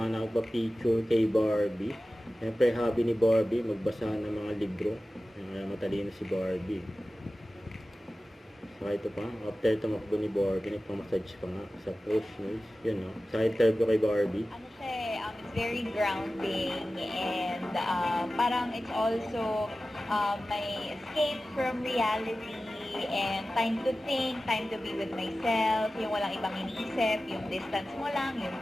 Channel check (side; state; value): both; normal; correlation 0.95